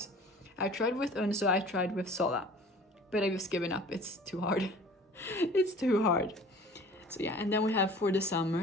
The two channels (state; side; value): normal; both; correlation 0.46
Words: I tried with Unso, I tried with Sola, but I just given up. It's too hard. It's too hard. So yeah, and then we have For the